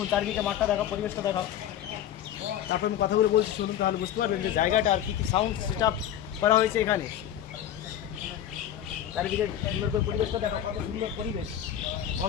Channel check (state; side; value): quieter; right; 10.8 dB